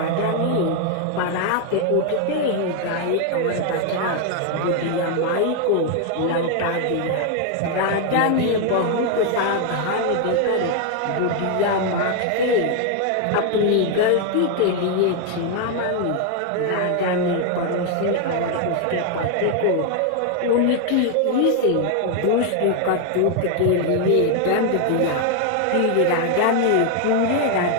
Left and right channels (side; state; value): both; different; correlation 0.00